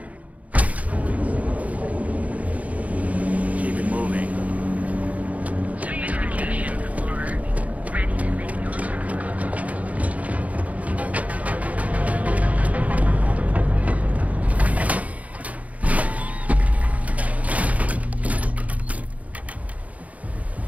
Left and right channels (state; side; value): late; left; 0.069 ms